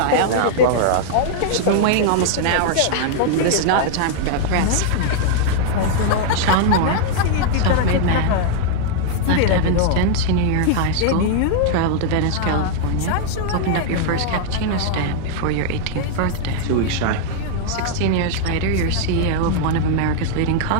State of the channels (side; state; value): both; different; correlation -0.01